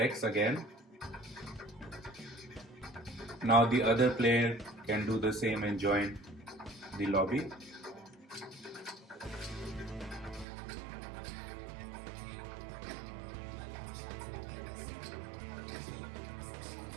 again. Now the other player can do the same and join the lobby.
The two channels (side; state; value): left; drops out; at 10.5 s